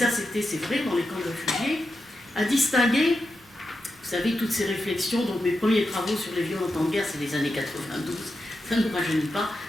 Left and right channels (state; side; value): normal; both; correlation 0.88